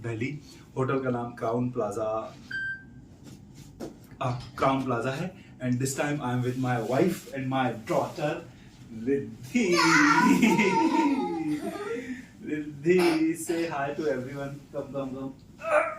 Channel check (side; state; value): both; identical; correlation 1.00